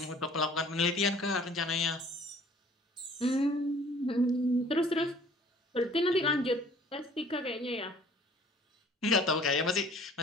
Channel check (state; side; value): normal; both; correlation 0.53